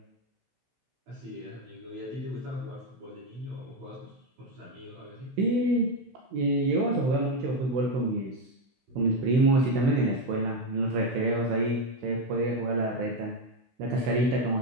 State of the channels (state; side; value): late; left; 16 ms